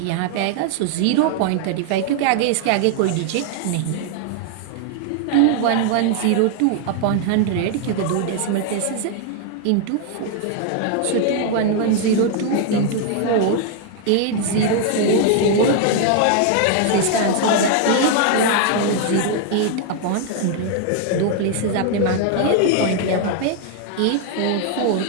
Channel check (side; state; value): both; different; correlation 0.00